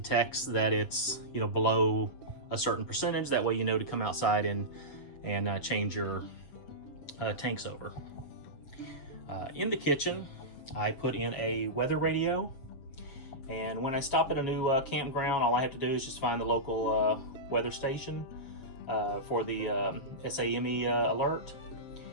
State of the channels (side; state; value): right; late; 7.3 ms